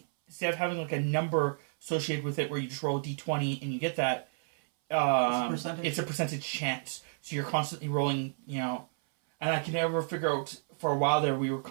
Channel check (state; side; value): silent; left; 57 dB below the other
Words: instead of having like a number associated with it where you just roll a d20 and you get that, percentage. it's a percentage chance. So you're constantly rolling, and I can never figure out. For a while there, we were